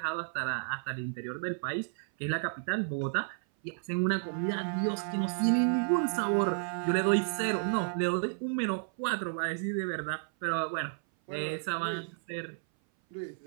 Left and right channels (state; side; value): silent; left; 56 dB below the other